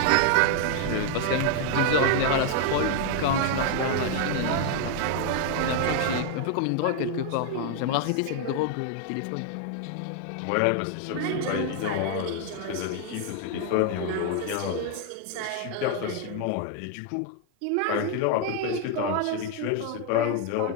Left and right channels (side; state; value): both; different; correlation 0.00